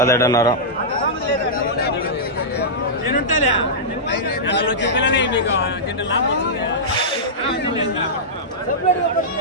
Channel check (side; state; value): both; normal; correlation -0.13